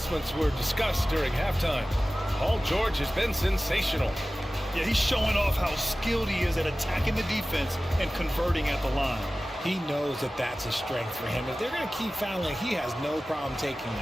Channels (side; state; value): both; normal; correlation 0.97